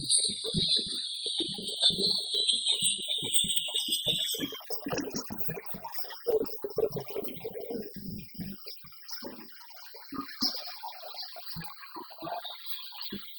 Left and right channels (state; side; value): identical; both; correlation 1.00